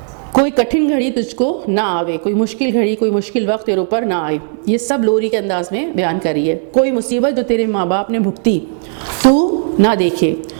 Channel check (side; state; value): left; silent; 59 dB below the other